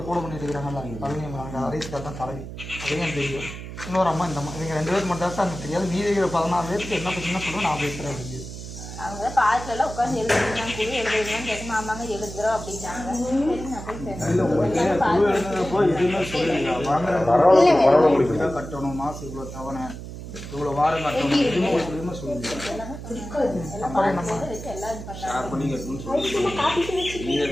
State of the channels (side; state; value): right; noise; hum, 10 dB below the sound